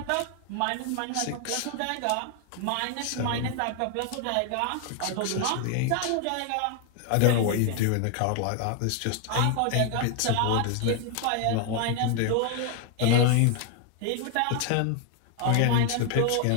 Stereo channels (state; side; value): different; both; correlation 0.00